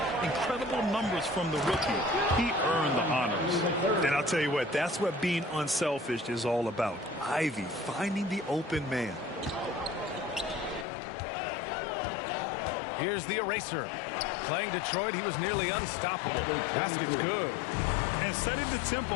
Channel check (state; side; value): drops out; right; at 10.9 s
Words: Incredible numbers from the rookie. He earned the honors. And I'll tell you what, that's what being unselfish is all about. Ivy finding the open man. Here's the eraser. Playing Detroit, he was nearly unstoppable. Basket's good. And setting the